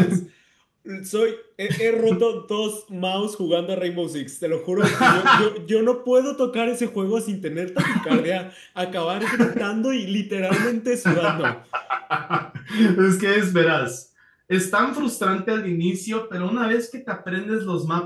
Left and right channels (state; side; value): identical; both; correlation 1.00